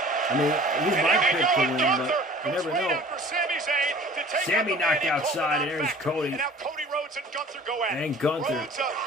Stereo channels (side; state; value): both; normal; correlation 0.46